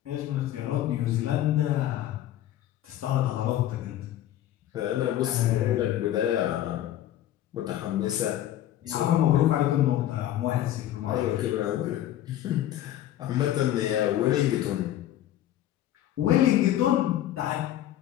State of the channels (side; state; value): right; quieter; 12.6 dB